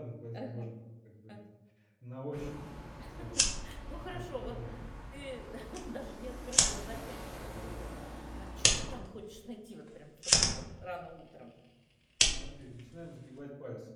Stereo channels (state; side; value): identical; both; correlation 1.00